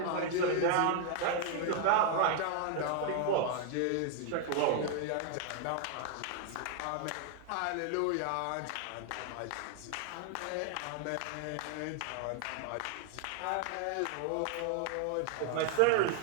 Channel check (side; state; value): both; different; correlation 0.00